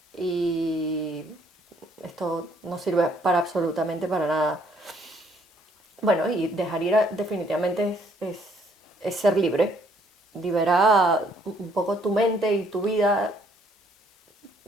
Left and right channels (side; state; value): both; normal; correlation 0.65